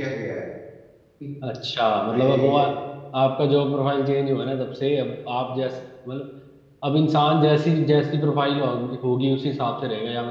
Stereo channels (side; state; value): both; identical; correlation 1.00